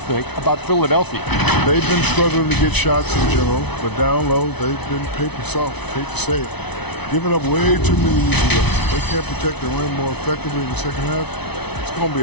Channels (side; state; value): right; late; 0.99 ms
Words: about Philadelphia? They've been struggling to get shots in general, but down low, they've been paper soft, hate to say it. Giving up way too many easy looks. They can't protect the rim more effectively in the second half. It's going to be